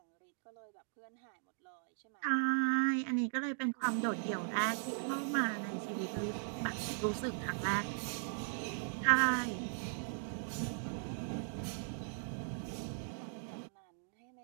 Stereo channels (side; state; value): left; silent; digital silence